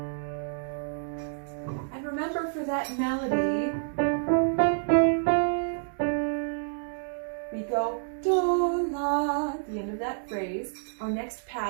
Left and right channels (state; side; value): silent; left; 59 dB below the other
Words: And remember for that melody, we go do, la, at the end of that phrase. Our next